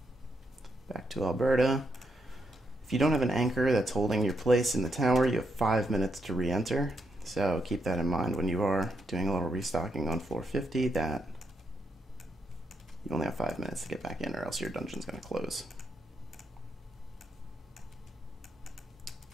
Back to Alberta. If you don't have an anchor that's holding your place in the tower, you have 5 minutes to re-enter. So keep that in mind when you are doing a little restocking on floor 50, that you only have 5 minutes to get back in, or else your dungeon's going to close.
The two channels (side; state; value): both; normal; correlation 0.80